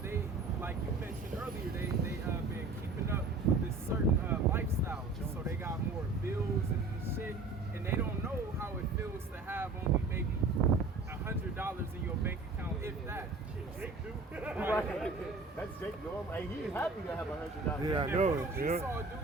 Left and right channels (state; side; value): quieter; left; 3.7 dB